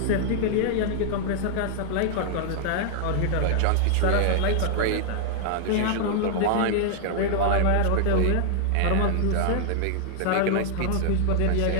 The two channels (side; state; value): both; different; correlation -0.01